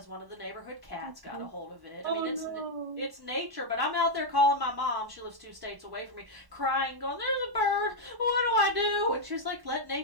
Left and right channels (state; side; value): late; left; 1.1 ms